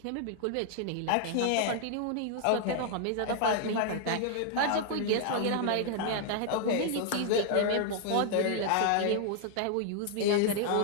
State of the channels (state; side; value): different; both; correlation 0.00